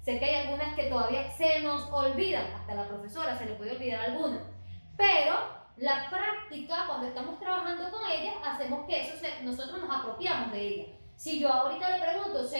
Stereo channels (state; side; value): inverted; both; correlation -1.00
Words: sé que hay algunas que todavía se nos olvidan, hasta a la profesora se le puede olvidar algunas, pero la práctica, cuando estamos trabajando con ellas, hacemos que nosotros nos apropiamos de ella. Si yo ahorita le pregunto